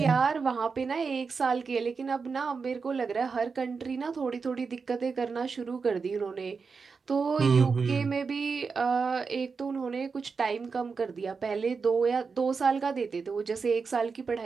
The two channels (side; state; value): left; quieter; 5.1 dB